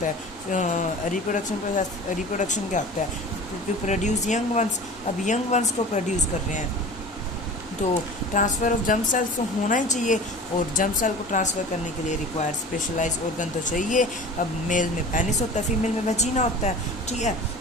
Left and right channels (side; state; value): both; normal; correlation 0.39